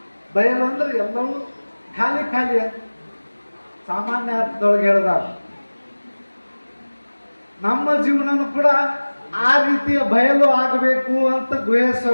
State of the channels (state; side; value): inverted; both; correlation -1.00